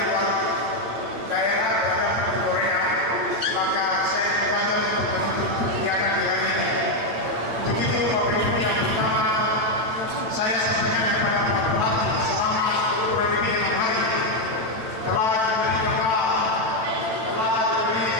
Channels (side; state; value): left; late; 9.1 ms